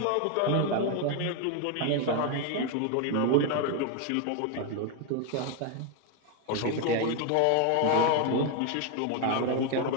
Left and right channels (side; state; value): both; different; correlation 0.01